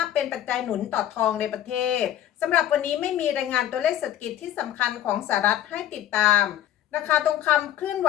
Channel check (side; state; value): right; quieter; 11.8 dB